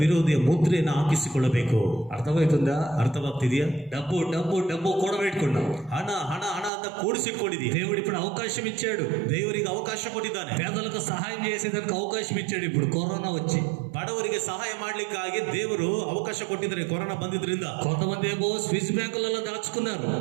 ವಿರೋಧಿಯ ಮುದ್ರೆಯನ್ನು ಹಾಕಿಸಿಕೊಳ್ಳಬೇಕು. అర్థమవుతుందా? ಅರ್ಥವಾಗ್ತಿದೆಯಾ? డబ్బు డబ్బు డబ్బు కూడబెట్టుకున్నావు. ಹಣ ಹಣ ಹಣ ಅಂತ ಕೂಡಿಸಿಟ್ಕೊಂಡಿದೀಯ. దేవుడు ఇప్పుడు అవకాశం ఇచ్చాడు. ದೇವರಿಗೆ ಅವಕಾಶ ಕೊಟ್ಟಿದ್ದಾನೆ. పేదలకు సహాయం చేసేదానికి అవకాశం ఇచ్చాడు. ఇప్పుడు కరోనా వచ్చి ಬಡವರಿಗೆ ಸಹಾಯ ಮಾಡ್ಲಿಕ್ಕಾಗಿ ದೇವರು ಅವಕಾಶ ಕೊಟ್ಟಿದ್ದಾರೆ. ಕೊರೋನಾ ಬಂದಿದ್ರಿಂದ కొంతమంది ఏమో స్విస్ బ్యాంకులలో దాచుకున్నారు.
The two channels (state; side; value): drops out; left; at 6.7 s